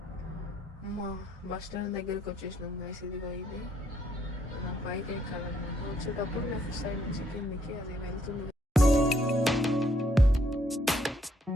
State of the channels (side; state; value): both; normal; correlation 0.70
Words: మా బస్ స్టాండ్ దగ్గరికి వచ్చేసినాం గైస్. ఇదిగో ఇది నా పైకి ఎక్కాలన్నమాట. వచ్చేటప్పుడు లెఫ్ట్ సైడ్ నుంచి కిందికి అది వెళ్తుంది.